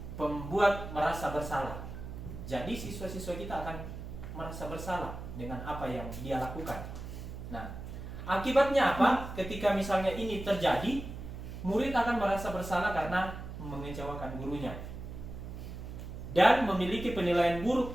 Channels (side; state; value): right; noise; hum, 9 dB below the sound